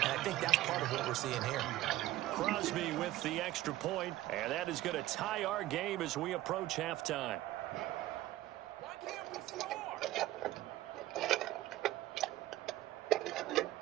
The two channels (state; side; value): quieter; left; 15.5 dB